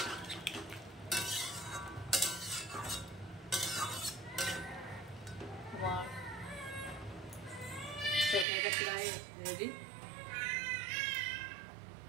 আমার তরকারিটা প্রায় রেডি।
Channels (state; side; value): drops out; left; at 8.5 s